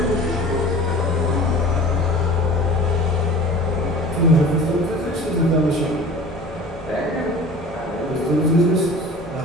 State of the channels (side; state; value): both; normal; correlation 0.42